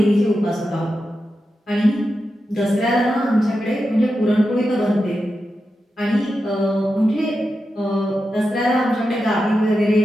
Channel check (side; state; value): both; normal; correlation 0.89